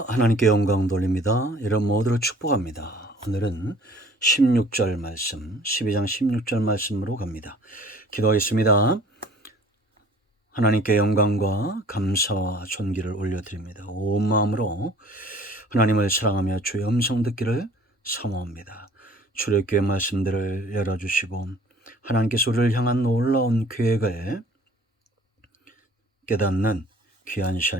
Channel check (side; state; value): both; normal; correlation 0.51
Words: 하나님께 영광 돌립니다. 이런 모두를 축복합니다. 오늘은 16절 말씀, 12장 16절 말씀으로 갑니다. 기도하겠습니다. 하나님께 영광과 감사와 존귀를 올려드립니다. 온 마음으로 하나님을 사랑하며 주의 음성 듣기를 사모합니다. 출애굽기의 말씀들을 열어주시고 하나님께서 우리를 향한 놀라운 계획을 깨닫는 귀한